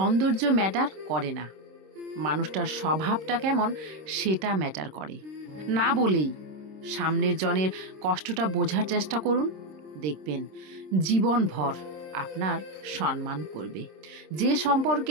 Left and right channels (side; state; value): left; late; 26 ms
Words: ম্যাটার করে না, মানুষটার স্বভাবটা কেমন সেটা ম্যাটার করে। না বলেই সামনের জনের কষ্টটা বোঝার চেষ্টা করুন, দেখবেন জীবনভর আপনার সম্মান করবে। যে